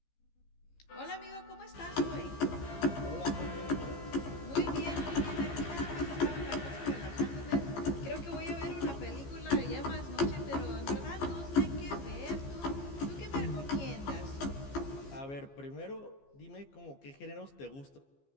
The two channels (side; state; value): right; late; 15 ms